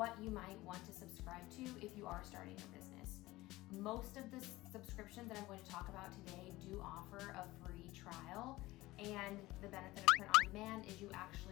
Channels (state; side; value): quieter; right; 18.7 dB